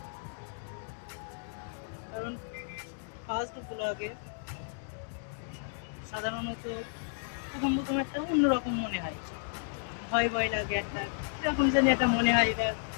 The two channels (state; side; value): silent; right; digital silence